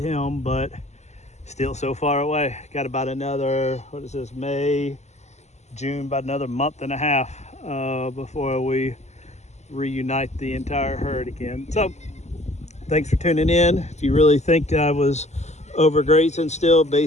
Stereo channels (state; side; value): late; right; 0.33 ms